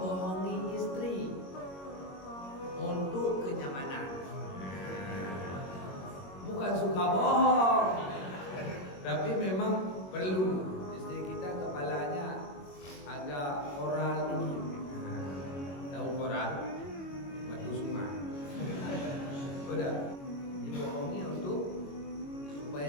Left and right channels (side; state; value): right; late; 22 ms